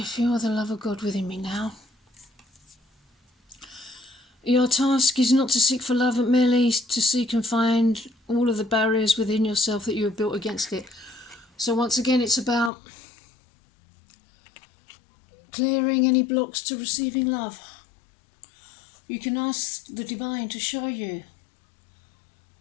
feel the love of God within me now. Your task is not to seek for love, but merely to seek and find all of the barriers within yourself that you have built against it. So once again, it's about clearing any blocks to receiving love. You can ask the divine to show you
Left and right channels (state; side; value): drops out; right; at 12.7 s